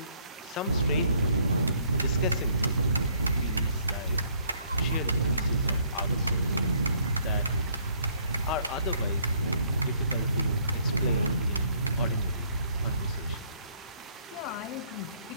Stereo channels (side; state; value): both; inverted; correlation -0.65